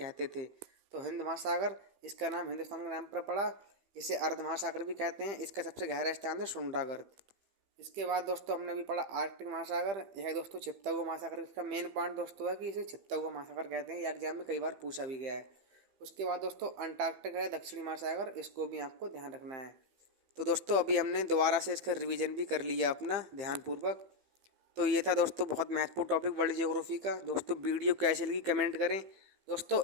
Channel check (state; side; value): late; left; 15 ms